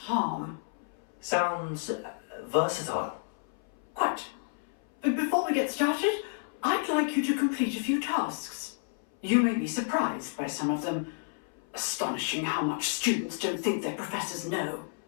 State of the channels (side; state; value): right; silent; 57 dB below the other